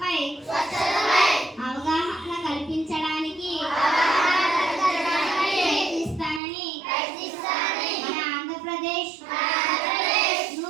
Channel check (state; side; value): drops out; left; at 6.4 s